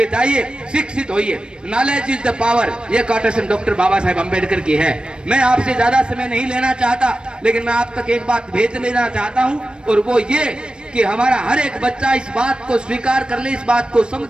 जाइए, शिक्षित होइए, नॉलेज इज द पावर। ये कोटेशन डॉक्टर बाबा साहेब अम्बेडकर की है। मैं आपसे ज्यादा समय नहीं लेना चाहता, लेकिन मैं आप तक एक बात भेज लेना चाहता हूं, और वो ये कि हमारा हर एक बच्चा इस बात को स्वीकार कर ले, इस बात को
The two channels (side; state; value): left; late; 0.053 ms